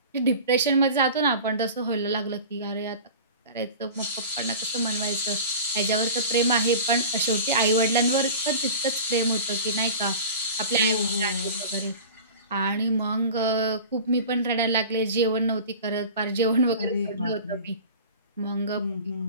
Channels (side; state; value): both; inverted; correlation -0.37